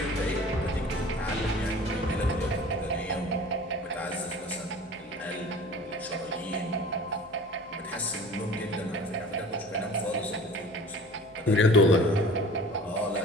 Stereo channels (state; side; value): normal; both; correlation 0.42